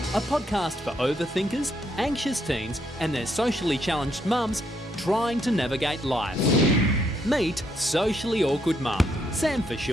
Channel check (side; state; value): both; normal; correlation 0.75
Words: podcast for overthinkers, anxious teens, and their socially challenged mums trying to navigate life. Meet socially awkward mum, Sam for